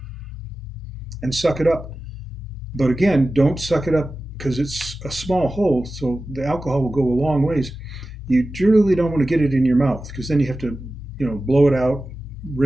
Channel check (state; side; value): normal; both; correlation 0.95